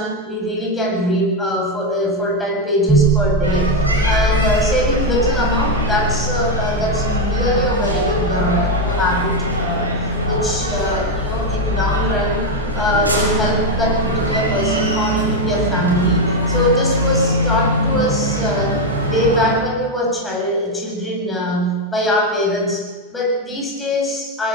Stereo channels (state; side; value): normal; both; correlation 0.06